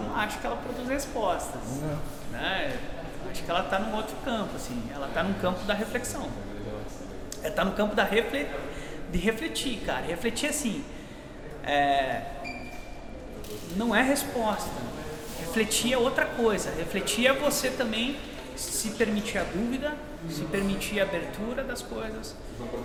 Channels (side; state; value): both; identical; correlation 1.00